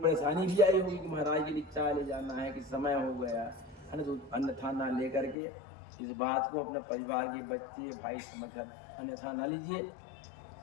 भी आई होगी कि महाराज के लिए चाय ले जाना है कि समय हो गया है ना, तो अन्यथा ना लेकर के इस बात को अपने परिवार के बच्चे भाई समझकर अन्यथा ना लीजिए।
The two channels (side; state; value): right; drops out; at 5.4 s